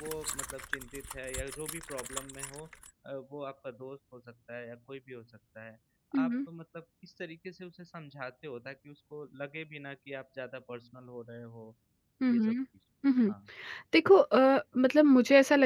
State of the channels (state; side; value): identical; both; correlation 1.00